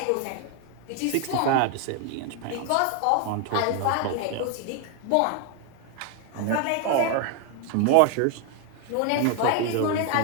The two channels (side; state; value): both; different; correlation 0.01